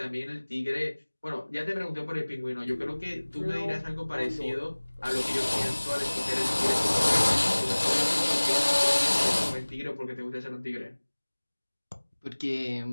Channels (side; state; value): both; inverted; correlation -1.00